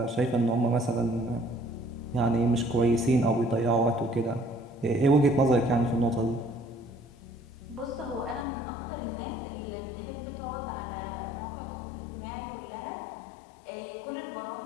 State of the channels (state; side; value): drops out; right; at 8.5 s